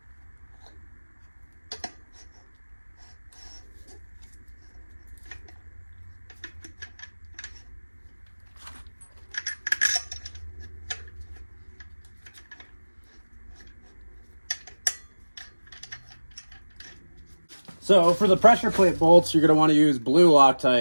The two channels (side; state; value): both; inverted; correlation -1.00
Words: So for the pressure plate bolts, you're going to want to use blue